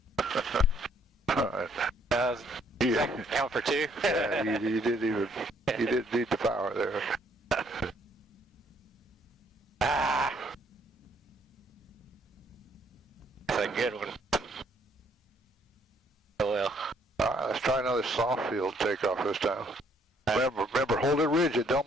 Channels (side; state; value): both; normal; correlation 0.66